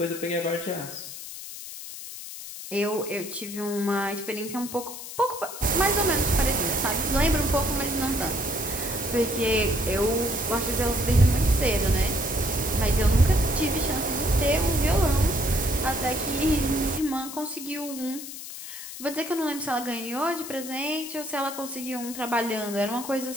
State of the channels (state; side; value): noise; left; hiss, 11 dB below the sound